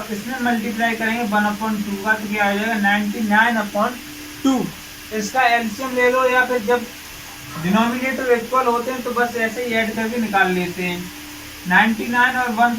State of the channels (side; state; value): both; identical; correlation 1.00